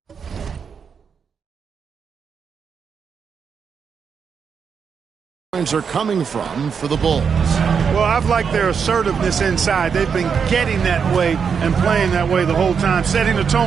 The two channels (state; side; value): quieter; left; 6.5 dB